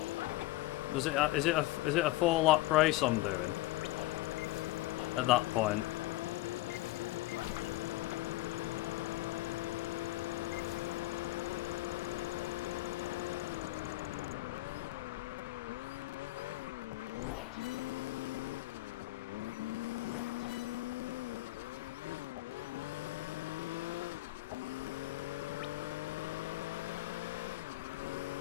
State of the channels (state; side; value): quieter; right; 17.9 dB